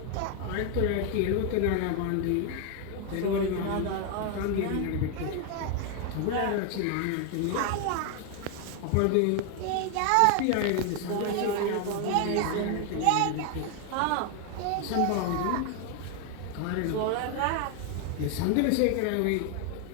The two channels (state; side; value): different; both; correlation 0.01